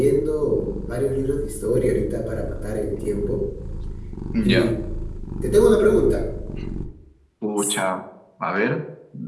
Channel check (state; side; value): identical; both; correlation 1.00